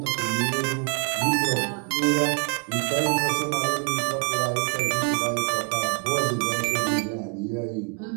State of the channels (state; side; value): quieter; left; 36.4 dB